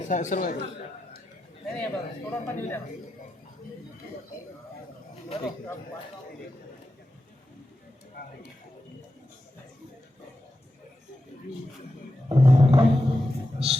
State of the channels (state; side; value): normal; both; correlation 0.89